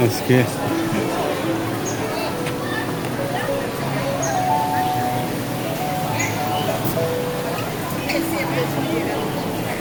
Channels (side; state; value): both; identical; correlation 1.00